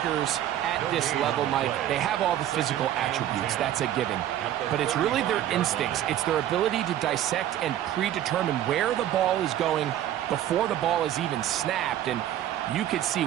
at this level, Mike, they have all the physical attributes. That's a given. But it's really their instincts. It's their ability to dissect and predetermine where the ball is going before the ball is even snapped. And you could see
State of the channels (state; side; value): quieter; left; 12.0 dB